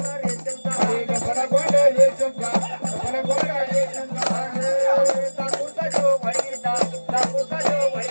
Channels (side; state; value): both; inverted; correlation -1.00